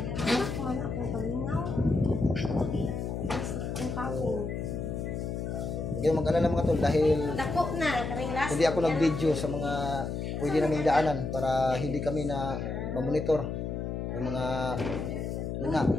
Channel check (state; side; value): noise; left; hum, 4 dB below the sound